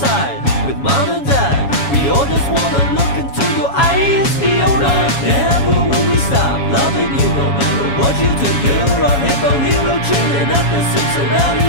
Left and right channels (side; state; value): right; late; 7.2 ms